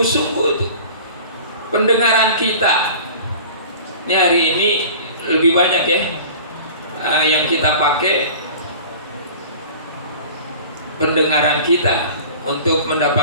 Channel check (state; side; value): inverted; both; correlation -0.42